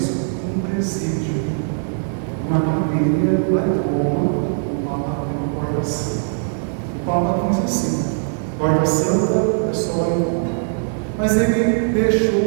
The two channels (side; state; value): left; silent; digital silence